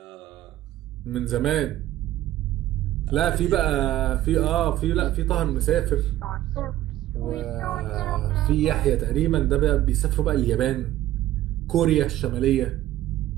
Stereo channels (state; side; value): quieter; left; 14.2 dB